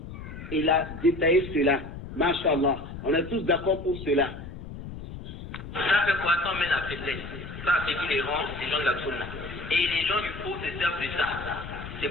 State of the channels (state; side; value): noise; left; rumble, 11 dB below the sound